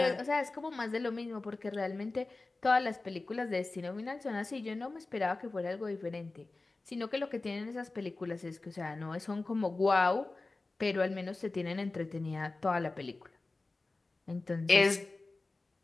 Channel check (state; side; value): quieter; right; 3.3 dB